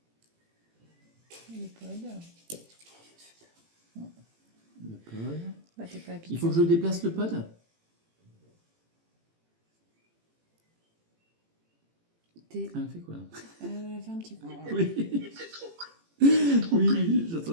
Le pod. Le pod. Bah, t'es pas habitué. Il faut que je déplace le pod? T. Elle fait quoi là? Elle a fait un petit peu. Il Oui, est peut-être trop près. Il est peut-être trop près. oui, j'ai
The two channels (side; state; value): left; late; 18 ms